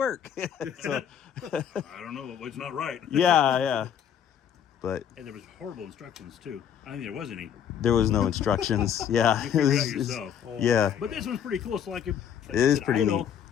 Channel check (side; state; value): right; quieter; 8.8 dB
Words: So, I don't know. It's not right. yeah. But And there was horrible instructions too. I don't think there was any. there was no instructions. Yeah. You figure it out yourself. Yeah. But this one's pretty cool. So like, it is pretty neat.